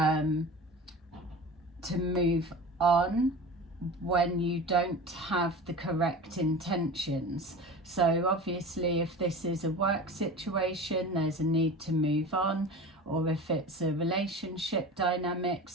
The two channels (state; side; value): normal; both; correlation 0.34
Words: move on when you don't have the correct intentions. So obviously, if this is a work situation, there's a need to move on, or if it's a relationship